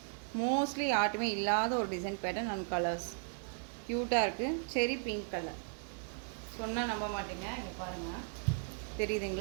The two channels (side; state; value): left; silent; 54 dB below the other